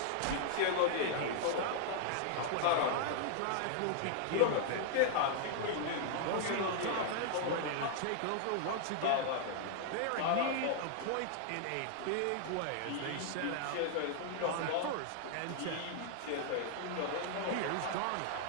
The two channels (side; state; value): both; different; correlation -0.01